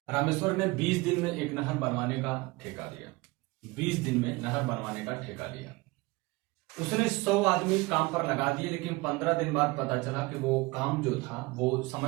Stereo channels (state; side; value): quieter; left; 23.1 dB